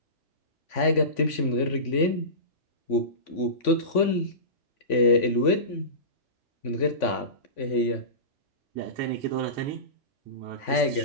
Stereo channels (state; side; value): late; right; 3.5 ms